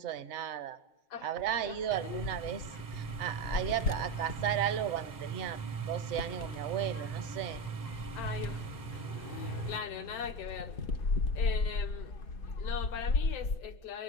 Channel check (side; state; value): right; late; 2.1 ms